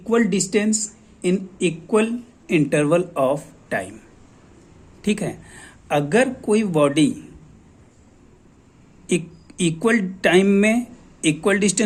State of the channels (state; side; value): identical; both; correlation 1.00